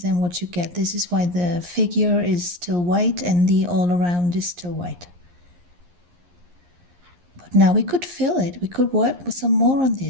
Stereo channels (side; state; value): left; late; 11 ms